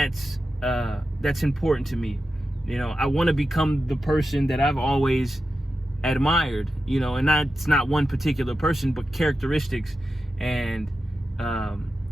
important to me. You know, I want to become the person that I've always admired, you know, and it's not one particular person, but characteristics and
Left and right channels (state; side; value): normal; both; correlation 0.91